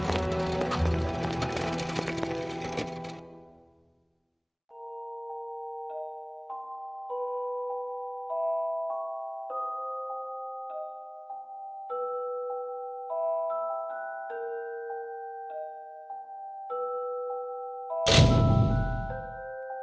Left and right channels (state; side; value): identical; both; correlation 1.00